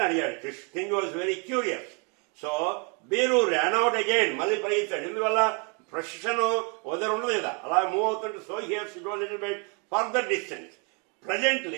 అడిగాడు. king was very curious. So Biru ran out again. మళ్ళీ పరిగెత్తాడు. ఎందువల్ల ప్రొసెషన్ వదరు ఉండదు కదా, అలా మూవ్ అవుతుంటే. So he has to go a little bit further distance.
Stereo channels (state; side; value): quieter; left; 35.1 dB